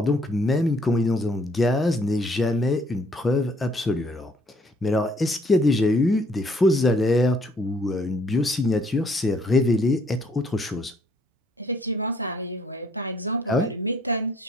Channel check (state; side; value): normal; both; correlation 0.64